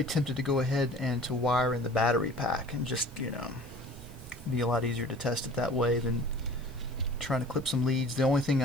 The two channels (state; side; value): noise; left; hiss, 27 dB below the sound